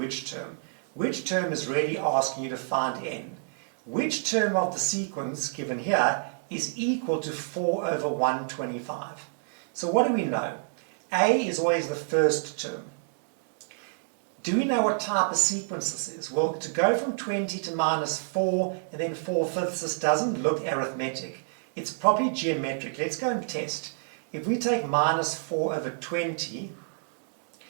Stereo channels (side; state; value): left; silent; digital silence